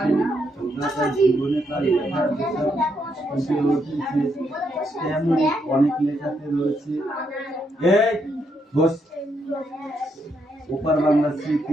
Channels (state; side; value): normal; both; correlation 0.77